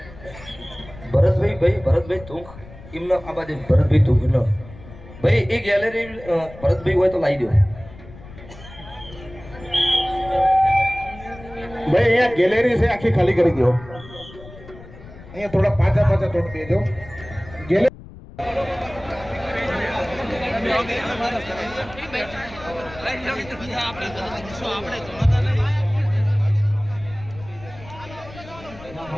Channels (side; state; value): left; noise; rumble, 18 dB below the sound